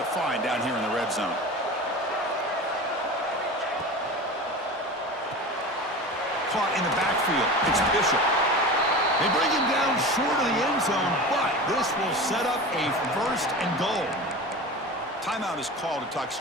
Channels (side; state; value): both; normal; correlation 0.32